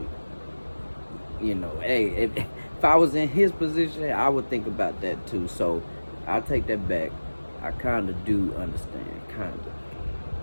you know, hey, if I was in his position, I would think about that too. So I'll take that back. I kind of do understand, kind of.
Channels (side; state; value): both; inverted; correlation -1.00